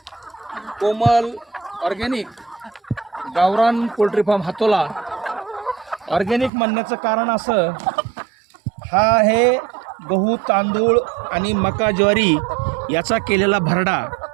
कोमल ऑर्गॅनिक गावरान पोल्ट्री फार्म हातोला. ऑर्गॅनिक म्हणण्याचं कारण असं, हा आहे गहू, तांदूळ आणि मका, ज्वारी याचा केलेला भरडा.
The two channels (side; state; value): left; drops out; at 6.5 s